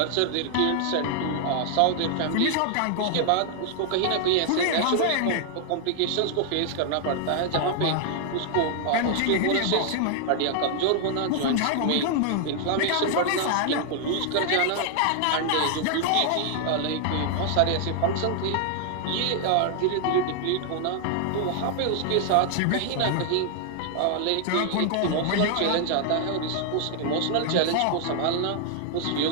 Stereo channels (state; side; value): different; both; correlation 0.00